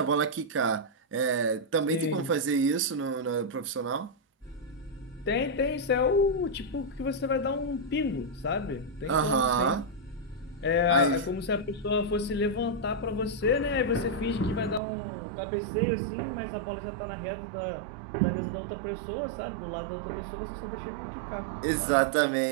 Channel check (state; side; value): drops out; left; at 14.8 s